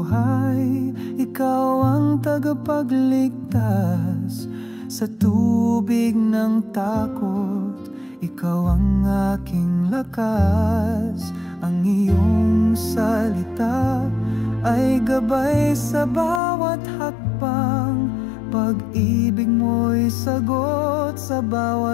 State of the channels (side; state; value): right; drops out; at 16.4 s